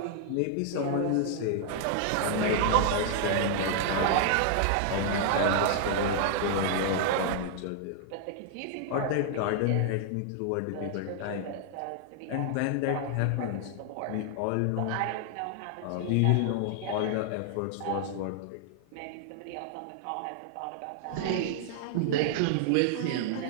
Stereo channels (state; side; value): different; both; correlation -0.01